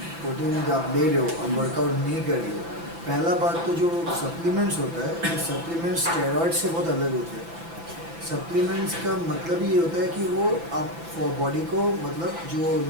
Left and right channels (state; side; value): late; left; 6.0 ms